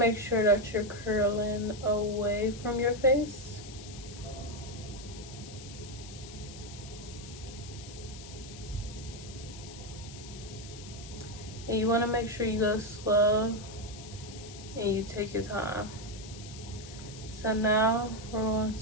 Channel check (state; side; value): noise; left; hiss, 15 dB below the sound